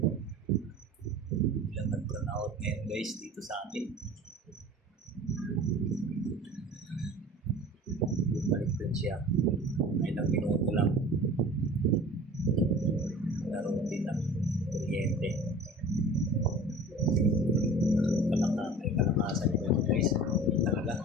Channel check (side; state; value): both; normal; correlation 0.41